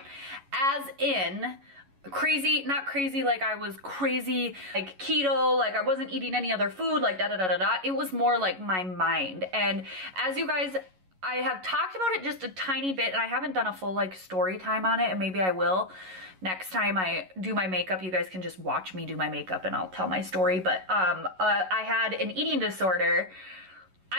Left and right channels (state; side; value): late; left; 11 ms